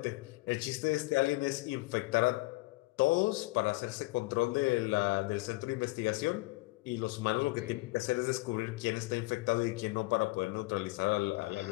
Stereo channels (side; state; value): right; quieter; 22.1 dB